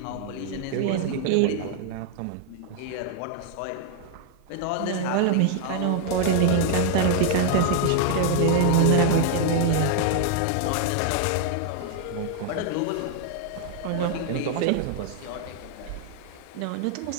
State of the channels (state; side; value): different; both; correlation 0.00